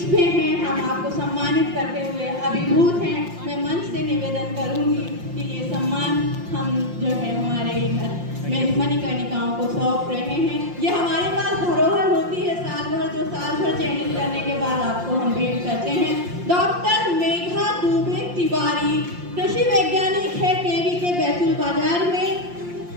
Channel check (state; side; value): late; left; 5.7 ms